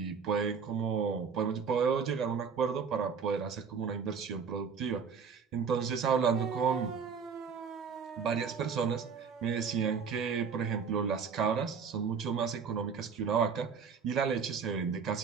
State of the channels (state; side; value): quieter; left; 6.1 dB